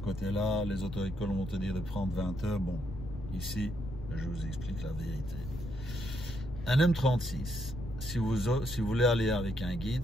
côté-là. Les auto-écoles vont te dire de prendre 20 heures. Bon, ici, je vous explique la vérité. Un M36, si vous voulez aller avec un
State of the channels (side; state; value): left; noise; rumble, 9 dB below the sound